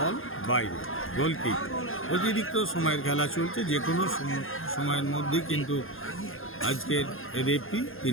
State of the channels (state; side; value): late; right; 0.60 ms